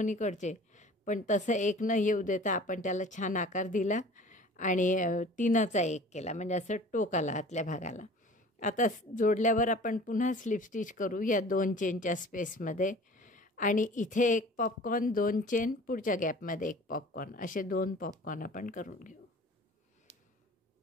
इकडचे, पण तसं एक न येऊ देता आपण त्याला छान आकार दिला आणि 3चा 1 केला, म्हणजे असं टोक आला आतल्या भागाला. आता जोडल्यावर आपण पुन्हा स्लिप स्टिच करू या 2 चेनच्या स्पेसमध्ये आणि इथे एक पॉपकॉर्न, 2 चेन, पुढच्या गॅपमध्ये एक पॉपकॉर्न, असे 2 पॉपकॉर्न आपण करून घेऊ.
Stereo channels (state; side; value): normal; both; correlation 0.45